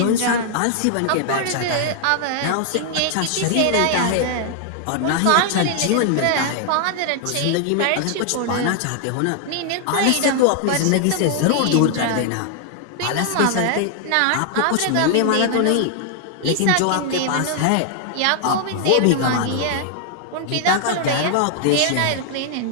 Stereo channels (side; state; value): both; different; correlation 0.00